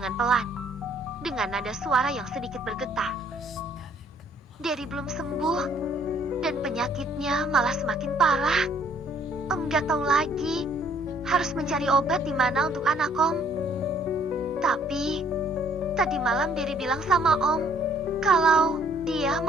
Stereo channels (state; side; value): normal; both; correlation 0.62